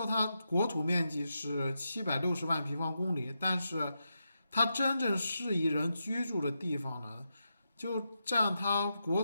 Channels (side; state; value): both; inverted; correlation -0.86